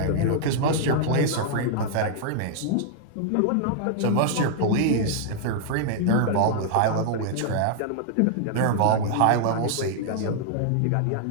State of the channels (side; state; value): both; different; correlation -0.01